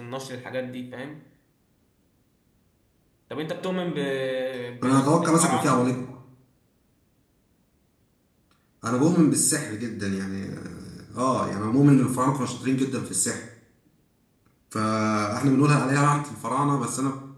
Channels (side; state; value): both; identical; correlation 1.00